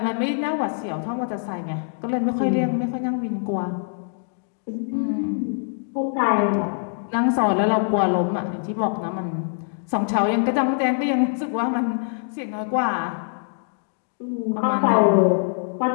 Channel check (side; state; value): right; silent; digital silence